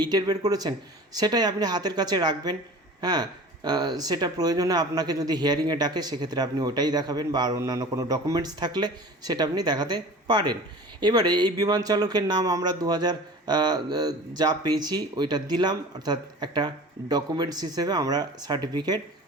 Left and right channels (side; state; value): both; normal; correlation 0.40